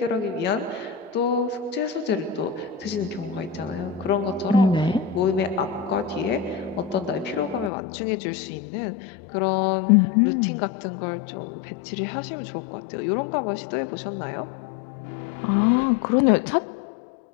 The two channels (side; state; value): right; drops out; at 7.7 s